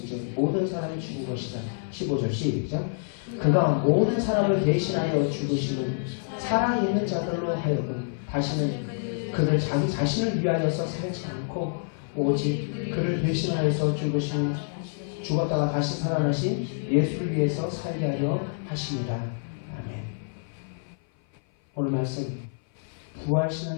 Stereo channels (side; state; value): right; silent; 56 dB below the other